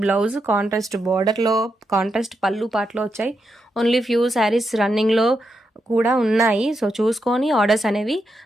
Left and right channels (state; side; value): normal; both; correlation 0.84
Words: బ్లౌజ్, కాంట్రాస్ట్ బార్డర్ లో, కాంట్రాస్ట్ పళ్ళు పాటలో వచ్చాయి. ఓన్లీ ఫ్యూ శారీస్ రన్నింగ్ లో కూడా ఉన్నాయి. సో చూసుకొని ఆర్డర్స్ అనేవి